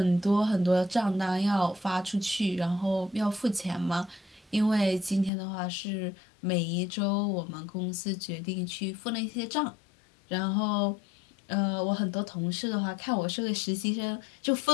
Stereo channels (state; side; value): drops out; right; at 5.3 s